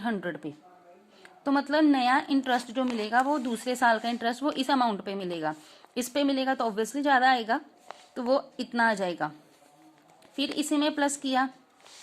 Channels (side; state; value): both; identical; correlation 1.00